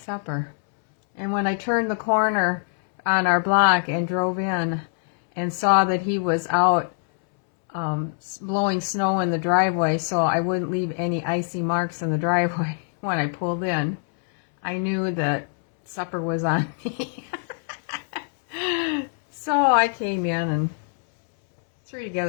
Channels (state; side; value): silent; right; 63 dB below the other